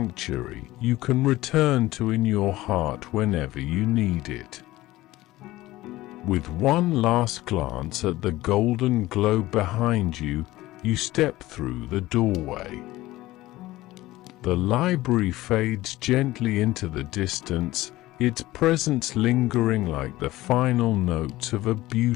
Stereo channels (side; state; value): right; quieter; 17.4 dB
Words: you can return to in your heart whenever you need it. With one last glance at the golden globe behind you, you step through the doorway. The library fades gently into the distance, its presence lingering like the final notes of a